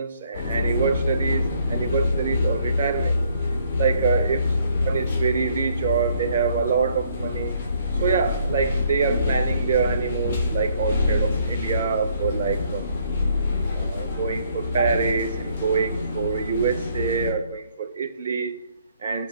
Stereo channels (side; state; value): both; inverted; correlation -0.67